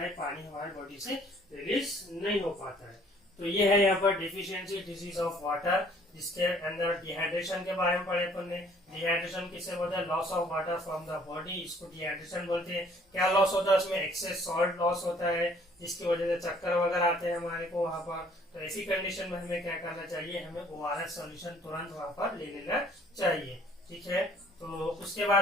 है, पानी हमारी बॉडी से रिलीज नहीं हो पाता है। तो ये है यहाँ पर डेफिशिएंसी डिजीज ऑफ वाटर, जिसके अंदर डिहाइड्रेशन के बारे में पढ़े अपन ने। डिहाइड्रेशन किससे बोलते हैं, loss of water from the body, इसको डिहाइड्रेशन बोलते हैं। क्या लॉस होता है, उसमें एक्सेस सॉल्ट लॉस होता है, जिसकी वजह से चक्कर वगैरह आते हैं हमारे को वहां पर। तो ऐसी कंडीशन में हमें क्या करना चाहिए, हमें ORS सॉल्यूशन तुरंत वहां पर ले लेना चाहिए, ठीक है। तो उसके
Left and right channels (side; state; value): both; normal; correlation 0.58